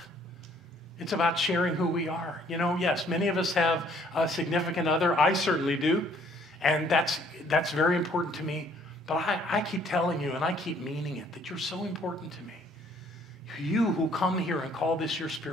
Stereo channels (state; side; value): normal; both; correlation 0.62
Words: It's about sharing who we are. You know, yes, many of us have a significant other. I certainly do. And that's very important to me. But I keep telling you, and I keep meaning it, that you're so important to me. You who come here and call this your